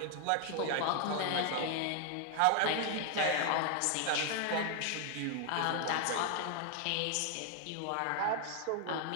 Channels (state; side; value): different; both; correlation 0.00